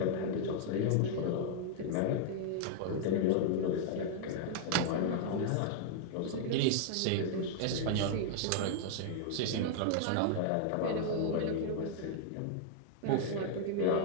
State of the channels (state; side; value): different; both; correlation -0.01